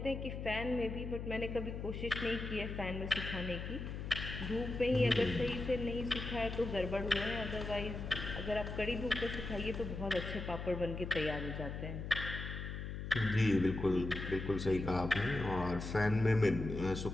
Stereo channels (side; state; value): left; noise; hum, 6 dB below the sound